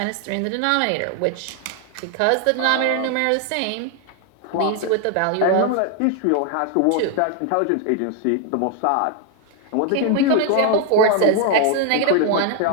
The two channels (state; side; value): different; both; correlation 0.00